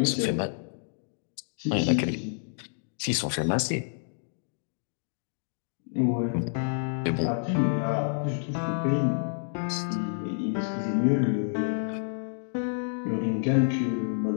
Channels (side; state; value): right; silent; digital silence